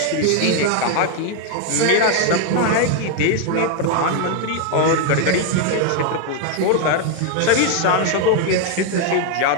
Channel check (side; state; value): both; different; correlation 0.01